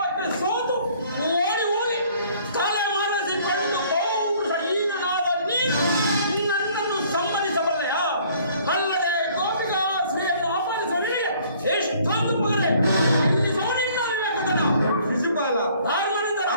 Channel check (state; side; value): inverted; both; correlation -0.58